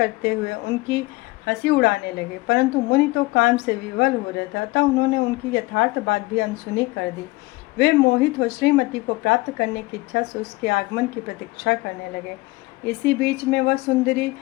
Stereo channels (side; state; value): right; quieter; 22.1 dB